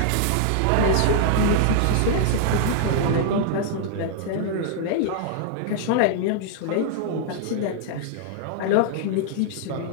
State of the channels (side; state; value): both; different; correlation -0.01